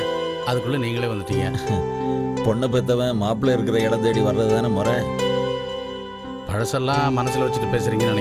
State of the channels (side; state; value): both; identical; correlation 1.00